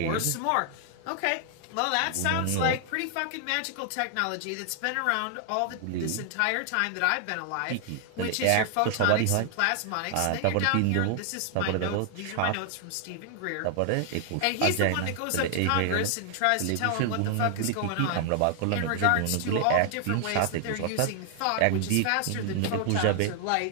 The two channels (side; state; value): both; different; correlation 0.00